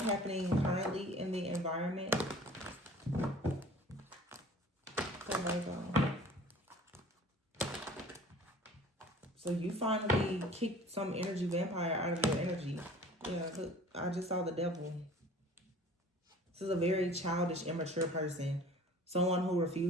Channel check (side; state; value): both; normal; correlation 0.46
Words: happening currently in the environment? So you finally kicked some energy vampire out of your energy. Yeah, I just saw the devil. This is a very childish, immature person. Someone who